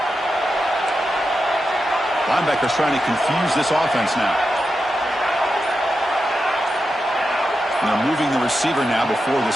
Linebackers trying to confuse this offense now. And they're moving the receiver now before the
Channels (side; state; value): both; normal; correlation 0.89